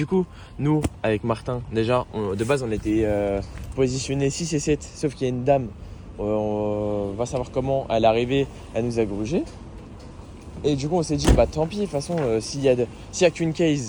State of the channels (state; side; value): identical; both; correlation 1.00